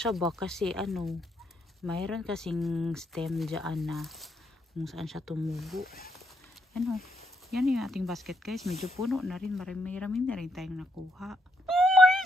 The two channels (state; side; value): normal; both; correlation 0.76